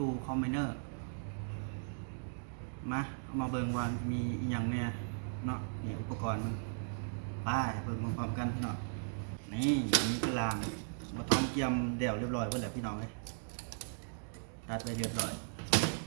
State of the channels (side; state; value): left; silent; digital silence